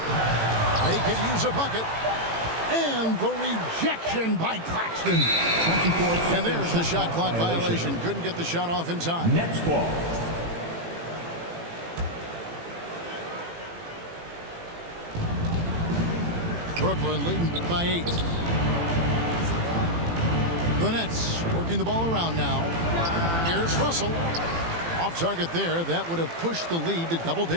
They could use a bucket. And the rejection by Claxton. And there's the shot clock violation. Couldn't get the shot off in time. Nets ball. Brooklyn leading by 8. The Nets working the ball around now. Here's Russell. Off target there. That would have pushed the lead to double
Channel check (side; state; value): left; late; 18 ms